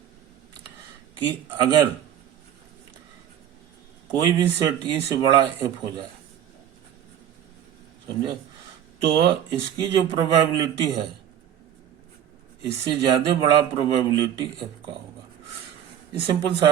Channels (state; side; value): quieter; left; 10.0 dB